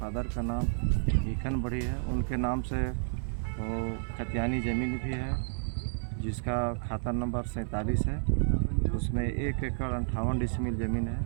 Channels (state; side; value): silent; left; 57 dB below the other